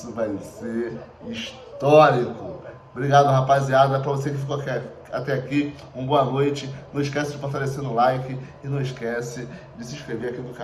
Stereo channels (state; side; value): identical; both; correlation 1.00